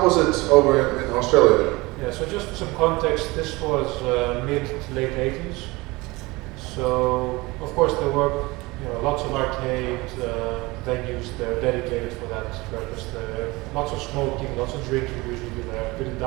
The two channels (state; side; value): quieter; left; 22.7 dB